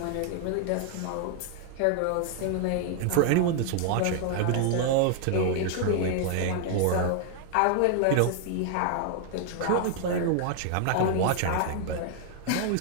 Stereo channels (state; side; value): different; both; correlation 0.00